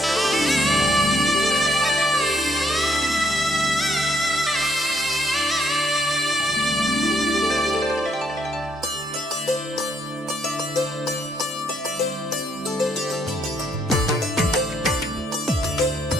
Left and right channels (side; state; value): both; normal; correlation 0.71